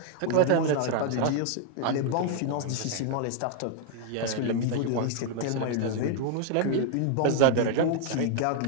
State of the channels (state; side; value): different; both; correlation 0.00